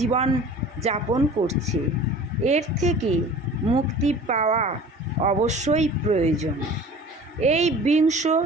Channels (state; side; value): normal; both; correlation 0.43